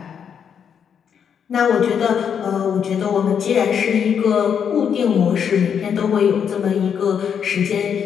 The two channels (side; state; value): right; quieter; 7.7 dB